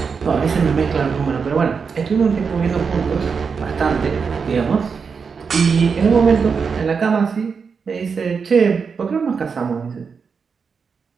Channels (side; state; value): left; quieter; 5.6 dB